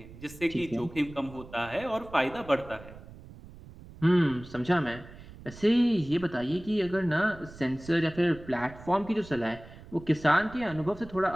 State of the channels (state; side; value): noise; right; rumble, 18 dB below the sound